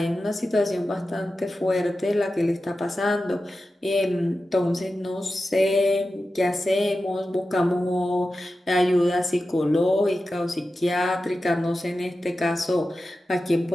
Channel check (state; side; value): normal; both; correlation 0.93